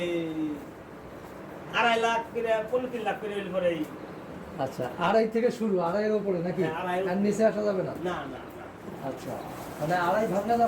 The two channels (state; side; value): identical; both; correlation 1.00